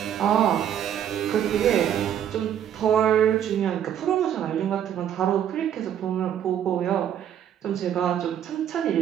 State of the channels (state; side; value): quieter; left; 9.9 dB